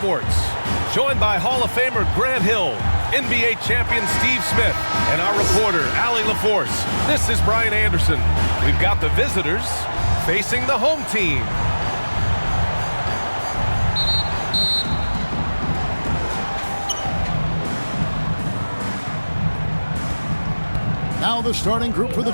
Joined by Hall of Famer Grant Hill, NBA champion Steve Smith, and our reporter, Allie LaForce. This is Brian Anderson. We've got the visitors facing the home team. Now the starting group for the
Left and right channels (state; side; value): inverted; both; correlation -1.00